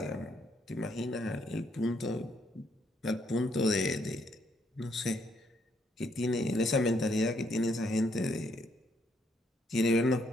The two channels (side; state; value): both; normal; correlation 0.72